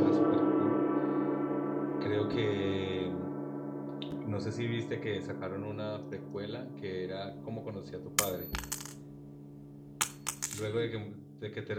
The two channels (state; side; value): identical; both; correlation 1.00